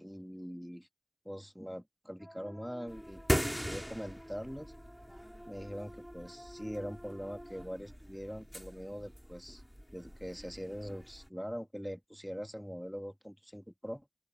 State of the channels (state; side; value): identical; both; correlation 1.00